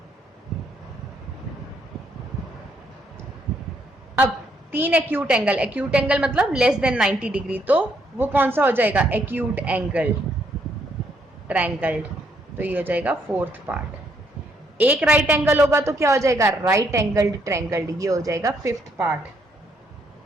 अब 3 एक्यूट एंगल, एक्यूट एंगल मतलब लेस देन 90 डिग्री, तो वो कौन सा हो जाएगा, एक्यूट एंगल ट्रायंगल। तो ये हो जाएगा फोर्थ पार्ट। एक राइट एंगल होगा तो क्या हो जाएगा, राइट एंगल्ड ट्रायंगल, ये हो जाएगा फिफ्थ पार्ट।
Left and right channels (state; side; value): normal; both; correlation 0.72